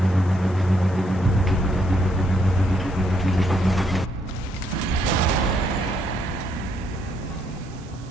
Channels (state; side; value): normal; both; correlation 0.73